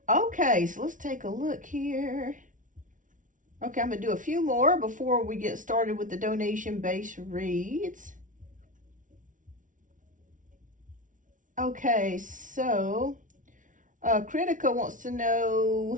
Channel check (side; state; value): left; late; 0.38 ms